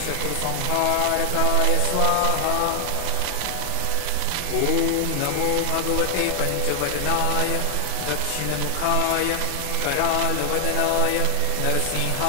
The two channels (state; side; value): different; both; correlation 0.00